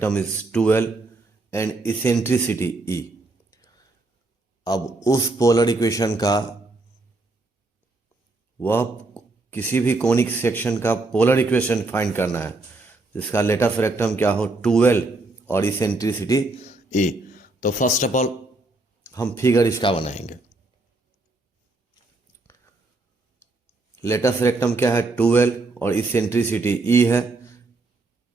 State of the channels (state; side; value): quieter; left; 3.1 dB